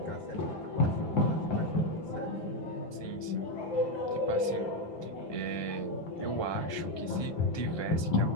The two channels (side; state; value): right; late; 1.2 ms